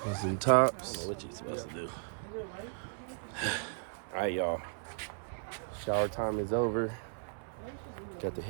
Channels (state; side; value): silent; left; 54 dB below the other